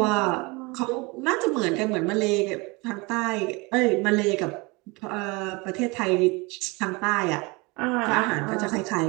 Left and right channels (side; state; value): left; quieter; 26.3 dB